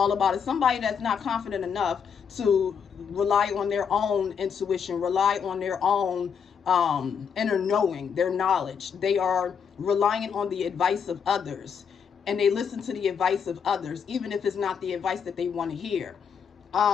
about. It's somebody that's not confident enough to rely on their own intuition, rely on their own inner knowing, their knowledge. They are relying on the advice of others, and they listen to the advice of others, even if it's not the advice that they want to hear.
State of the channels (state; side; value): quieter; right; 6.8 dB